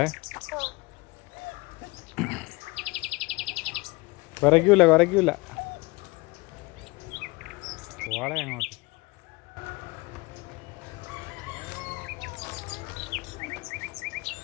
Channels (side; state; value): right; quieter; 24.8 dB